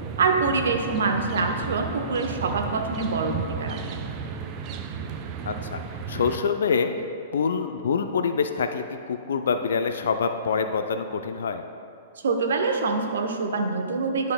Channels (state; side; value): inverted; both; correlation -0.49